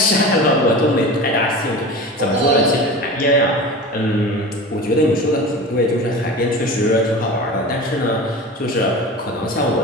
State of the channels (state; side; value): normal; both; correlation 0.33